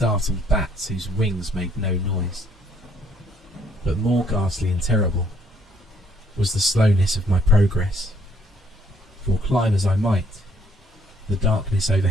bats whose wings made no noise. But more ghastly and terrible was the slowness of my progress, for climb as I might, the darkness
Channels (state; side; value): normal; both; correlation 0.66